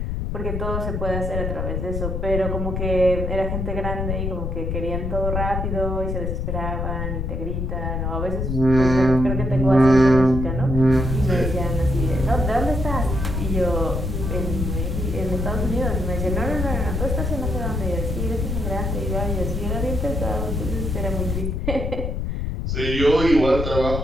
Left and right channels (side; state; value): left; noise; rumble, 2 dB below the sound